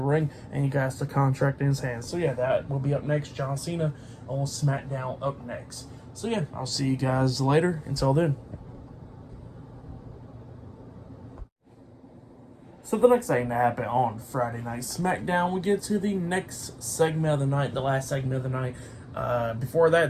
and he got the contract in his hands. So yeah, that will be up next. John Cena on SmackDown up next. So yeah, I'll see you guys later. Until then. So the next thing that happened on Friday Night SmackDown, we get to the next segment of the night, the last segment of the night. Before that,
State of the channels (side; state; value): both; identical; correlation 1.00